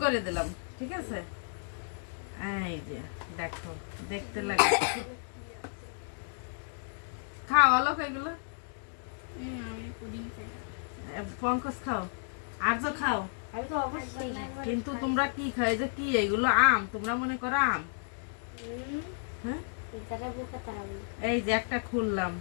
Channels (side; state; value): right; silent; digital silence